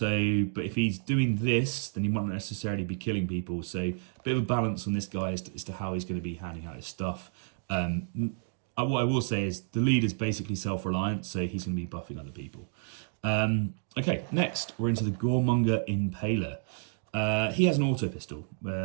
but if he's doing this, then he might not necessarily be killing people. So, a bit of a balance on this guy as to how he's going to be handing out his stuff. What I will say is the leader's basically self-reliant, so he's going to be buffing other people. Okay, next we're into the Goremonger Impaler. He has an auto pistol,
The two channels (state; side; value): silent; left; 58 dB below the other